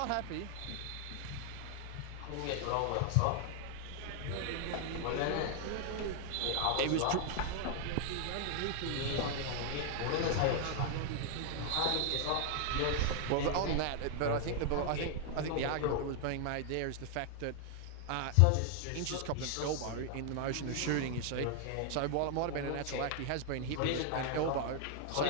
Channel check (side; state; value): both; different; correlation 0.00